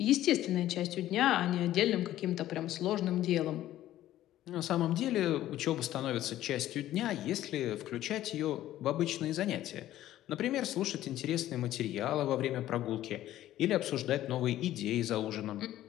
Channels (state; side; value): quieter; right; 13.6 dB